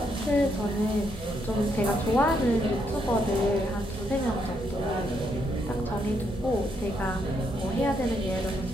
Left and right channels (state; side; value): normal; both; correlation 0.76